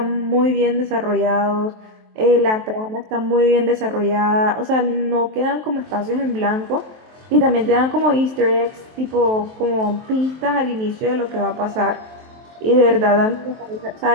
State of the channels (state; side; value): late; left; 23 ms